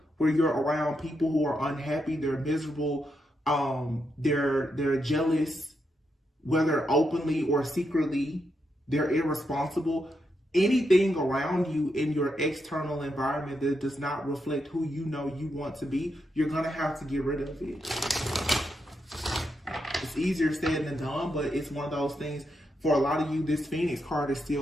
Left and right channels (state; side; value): normal; both; correlation 0.83